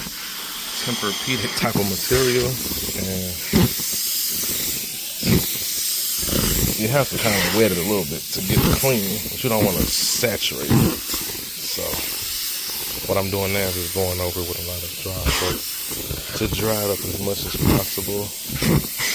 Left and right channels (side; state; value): both; identical; correlation 1.00